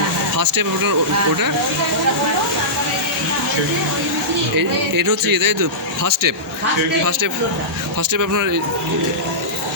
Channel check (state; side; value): normal; both; correlation -0.16